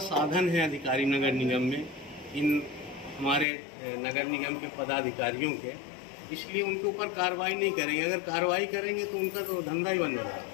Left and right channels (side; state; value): right; drops out; at 3.5 s